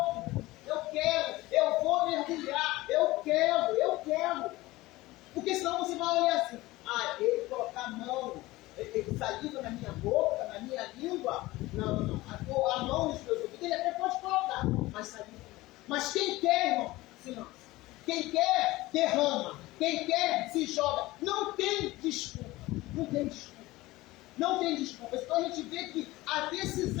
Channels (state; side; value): quieter; right; 19.0 dB